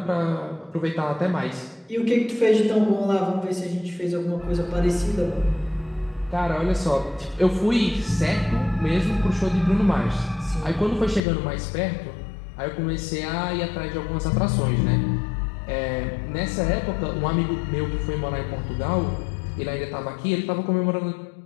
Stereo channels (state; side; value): drops out; right; at 11.2 s